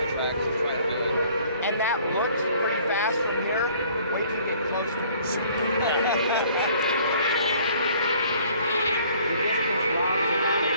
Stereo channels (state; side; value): inverted; both; correlation -0.57